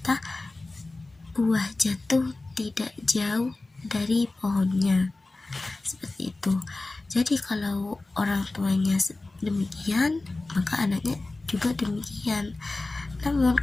buah jatuh tidak jauh dari pohonnya, seperti itu. Jadi kalau orang tuanya demikian, maka anaknya juga demikian. Namun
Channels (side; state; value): right; quieter; 3.1 dB